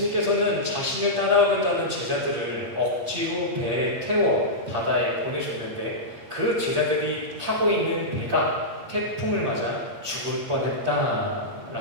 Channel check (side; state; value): left; late; 8.6 ms